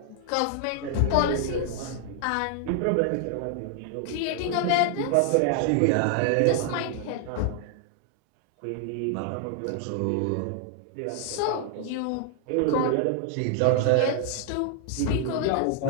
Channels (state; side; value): different; both; correlation 0.00